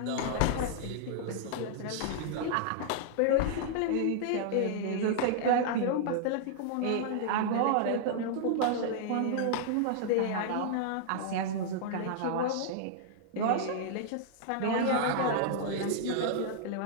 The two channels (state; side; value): different; both; correlation -0.01